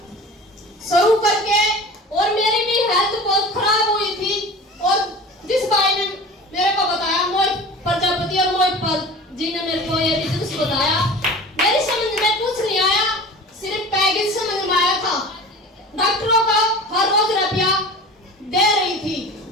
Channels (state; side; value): normal; both; correlation 0.38